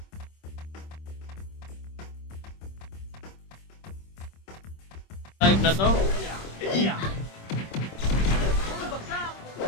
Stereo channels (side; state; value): right; late; 26 ms